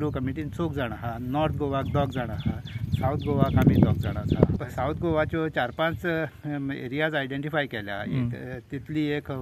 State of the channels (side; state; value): both; identical; correlation 1.00